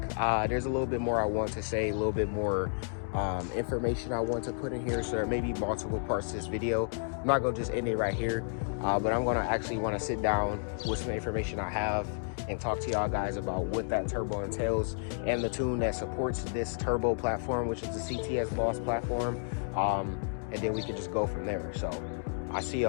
There's a little bit more I want to say, a little bit more information I want to put in here, so there may be multiple parts to this video. I'm not gonna just end it right here, but I'm gonna actually want to sit down with some information I have and talk to y'all guys about what that turbo entails and the tune that supports this turbo platform, which is the CTS Boss platform, and then we can just go from there. So I see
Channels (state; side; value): silent; right; digital silence